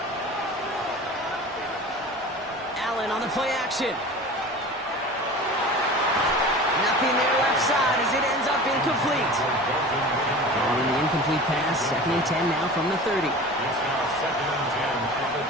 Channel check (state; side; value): normal; both; correlation 0.37